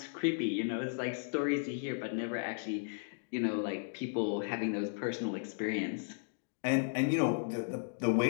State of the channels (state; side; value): silent; right; digital silence